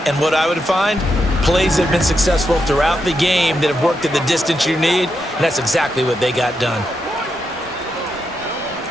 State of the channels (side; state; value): both; normal; correlation 0.84